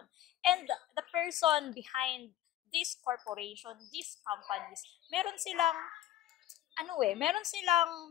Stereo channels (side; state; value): right; quieter; 13.1 dB